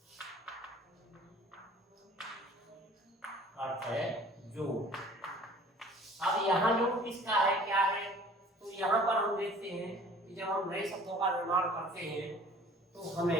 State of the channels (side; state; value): both; normal; correlation 0.49